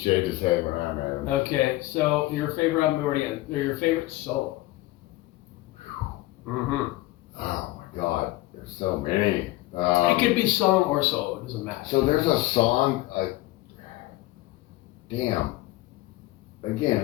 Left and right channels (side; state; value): right; quieter; 18.3 dB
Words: his head when I met him. Okay, so your favorite album already, or your favorite solo? Mm-hmm. Oh my God, there's so many. It could be song or solo, it doesn't matter. So there's a song, damn. Again,